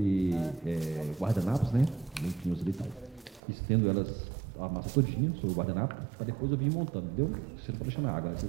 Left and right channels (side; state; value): left; drops out; at 3.4 s